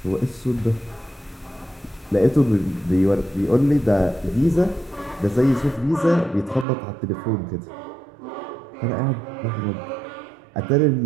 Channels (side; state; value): left; drops out; at 6.7 s